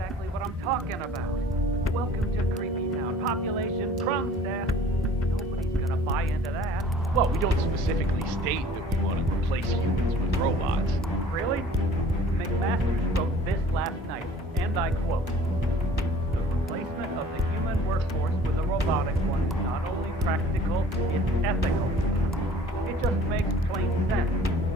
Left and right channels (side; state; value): both; normal; correlation 0.49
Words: what I'm talking about. Welcome to Creepy Town. Population Kronstadt. Nobody's gonna buy into that. Well, we don't specifically state that we want to replace humans with robots. Really? McMasters wrote this last night, and I quote, "The replacement of the human workforce with a robotic one is not only practical, it's ethical." It just makes plain sense.